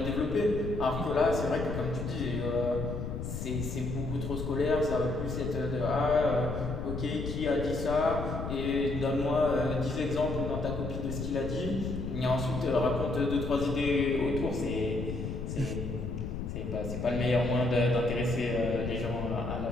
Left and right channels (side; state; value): left; noise; rumble, 5 dB below the sound